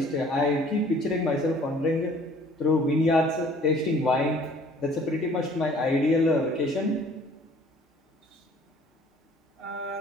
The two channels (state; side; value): normal; both; correlation 0.54